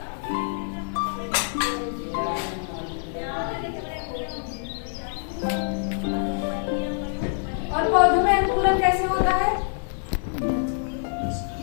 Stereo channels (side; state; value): right; silent; digital silence